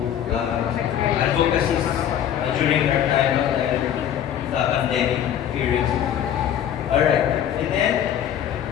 advocacy during our time of the pandemic period. Alright. And then,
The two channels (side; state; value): right; quieter; 10.0 dB